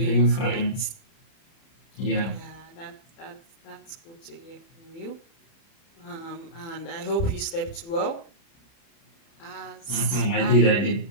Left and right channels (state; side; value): late; right; 30 ms